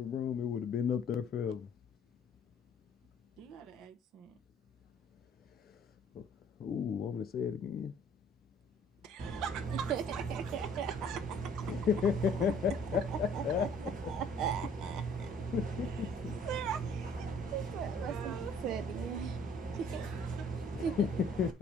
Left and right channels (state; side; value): normal; both; correlation 0.57